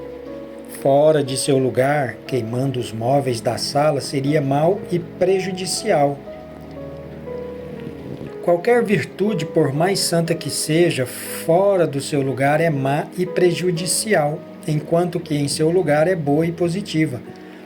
Fora de seu lugar, queimando os móveis da sala, seria mau e prejudicial. Qualquer virtude, por mais santa que seja, fora do seu lugar é má e prejudicial, enquanto que em seu lugar é boa e positiva.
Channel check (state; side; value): identical; both; correlation 1.00